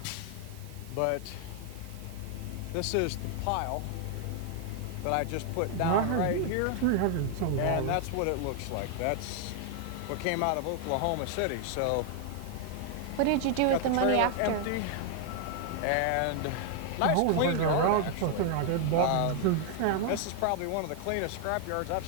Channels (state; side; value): different; both; correlation 0.00